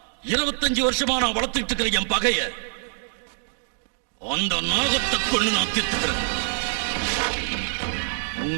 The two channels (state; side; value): silent; left; digital silence